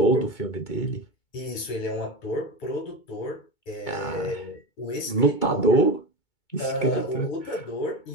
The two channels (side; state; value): right; late; 2.2 ms